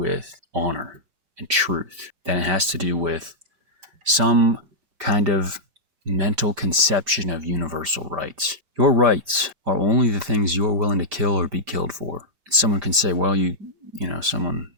honor and truth than it has to do with some kind of mental conception of universal rights. Your rights are only the things you're willing to kill or be killed for. Someone can say, well,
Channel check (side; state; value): left; late; 5.4 ms